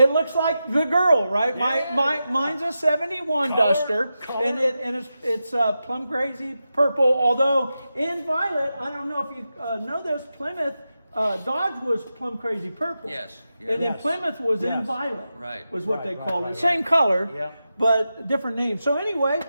looks like the girl, right? Mine's a 71 Duster, and it's plum crazy purple. Although in violet, I don't know if you know this, Plymouth Dodge was plum crazy purple. Yes. And then Plymouth was in violet. Right. Was what they called it. right. Same color, Yeah. but different name. So anyway.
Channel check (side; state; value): both; inverted; correlation -0.90